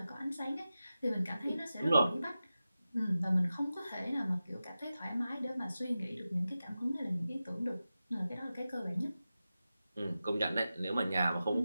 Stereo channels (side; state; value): both; inverted; correlation -0.93